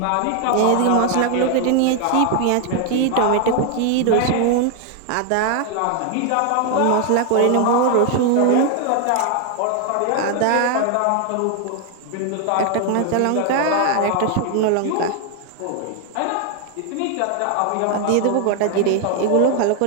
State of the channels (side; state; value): both; different; correlation 0.01